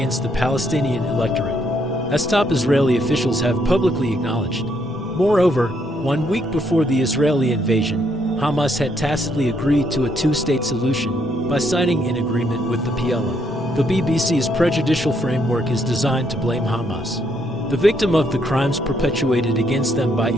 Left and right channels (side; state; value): both; normal; correlation 0.73